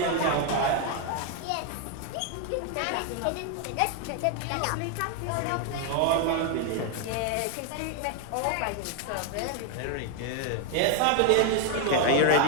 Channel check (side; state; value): both; different; correlation 0.01